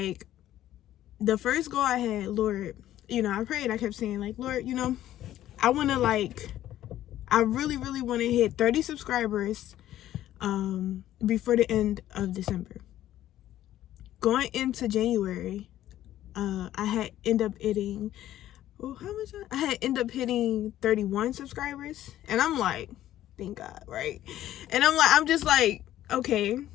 the first goal I had, Lord, I prayed. I kept saying, like, Lord, I want to, like, I really, really want to hit 30 subscribers before the end of December. Going into January, I had end up hitting, I had end up hitting 31 subscribers. And I'm like, thank God, right? And I'm just like, okay,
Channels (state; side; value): quieter; right; 13.0 dB